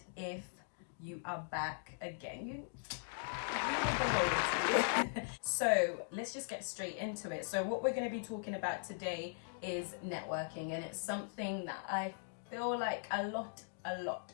if you are back again, you with the loyalty. So let's just get straight into it. So what we're going to be talking about today is networking, and it's something that I feel like a lot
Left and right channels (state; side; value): silent; right; digital silence